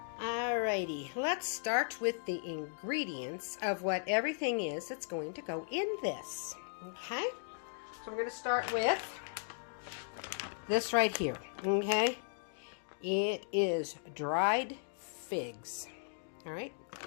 Alrighty, let's start with the ingredients of what everything is that's going to go in this. Okay, so we're going to start with this right here. Okay, it is dried figs. All right,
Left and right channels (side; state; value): right; silent; digital silence